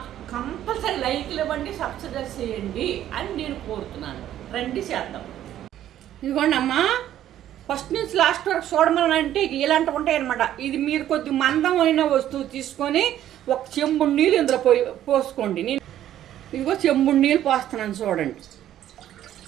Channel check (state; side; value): quieter; left; 11.9 dB